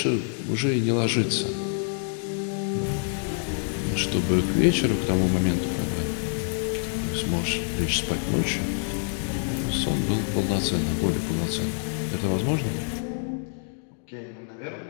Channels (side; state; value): right; silent; 58 dB below the other